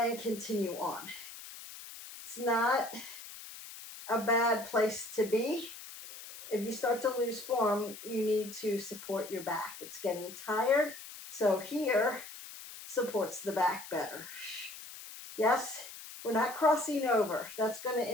continue on. It's not a bad place to be. If you start to lose form, you need to support your back. It's getting tired, so here supports the back better. Yes, we're not crossing over. That's going to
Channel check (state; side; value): noise; left; hiss, 14 dB below the sound